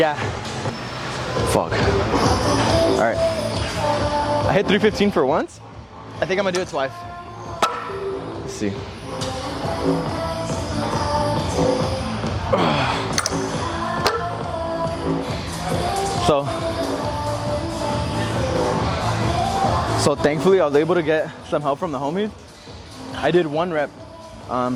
Fuck. All right. I hit 315 for once. I think I'm gonna do it twice. Let's see. So thankfully I was able to get some help from the homies. I did 1 rep.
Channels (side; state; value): both; identical; correlation 1.00